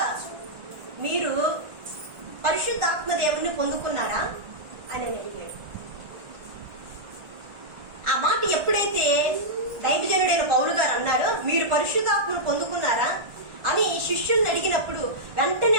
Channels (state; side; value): late; left; 1.5 ms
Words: మీరు పరిశుద్ధాత్మ దేవుని పొందుకున్నారా అని అడిగాడు. ఆ మాట ఎప్పుడైతే దైవజనుడైన పౌలు గారు అన్నారో, మీరు పరిశుద్ధాత్మను పొందుకున్నారా అని శిష్యుల్ని అడిగినప్పుడు